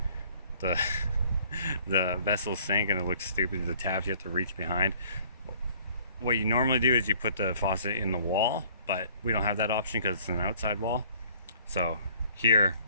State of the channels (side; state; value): both; inverted; correlation -0.56